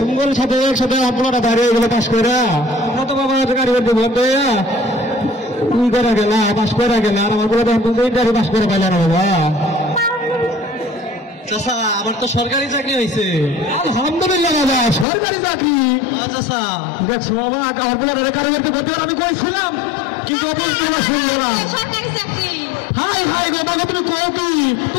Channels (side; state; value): right; drops out; at 15.1 s